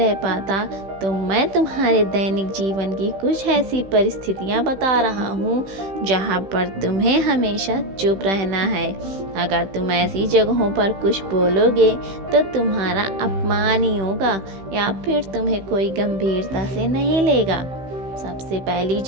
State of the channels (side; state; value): left; late; 15 ms